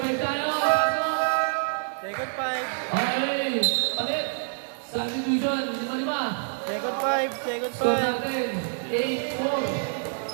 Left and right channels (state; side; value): silent; left; 60 dB below the other